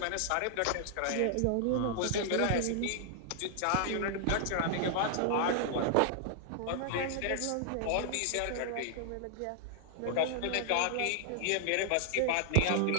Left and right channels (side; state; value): both; different; correlation 0.00